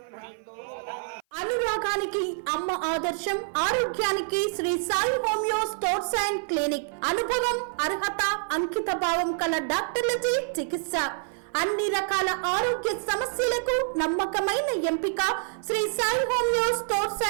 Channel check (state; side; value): silent; left; 56 dB below the other